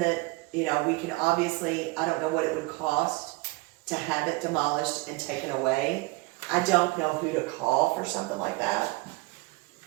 you know, we can obviously, I don't know what it would cost to have it demolished and taken away. I don't know who to call for something like that.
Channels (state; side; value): quieter; left; 24.4 dB